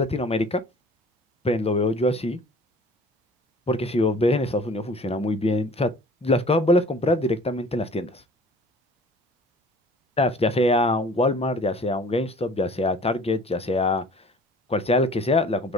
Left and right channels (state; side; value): normal; both; correlation 0.49